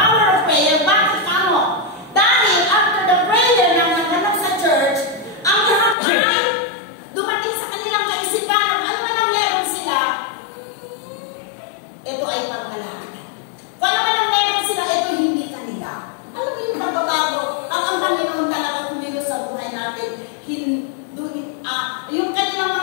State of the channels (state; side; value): drops out; right; at 6.0 s